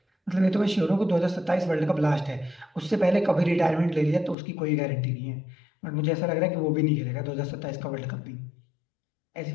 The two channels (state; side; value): drops out; right; at 4.4 s